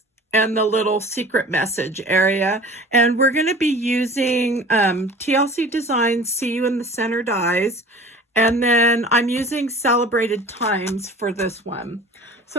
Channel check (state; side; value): normal; both; correlation 0.42